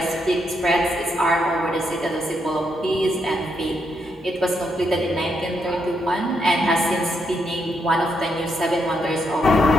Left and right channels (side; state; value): both; normal; correlation 0.79